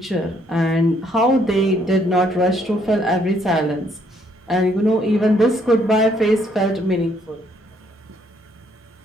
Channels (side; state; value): both; normal; correlation 0.68